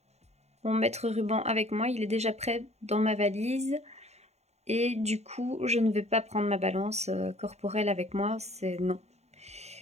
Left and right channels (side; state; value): left; late; 0.31 ms